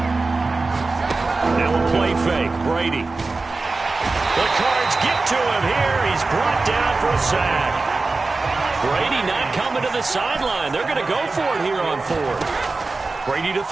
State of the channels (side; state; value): left; quieter; 3.6 dB